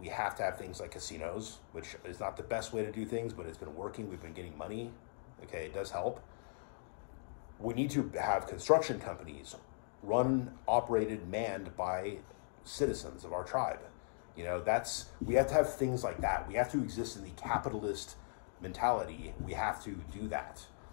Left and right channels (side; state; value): right; silent; digital silence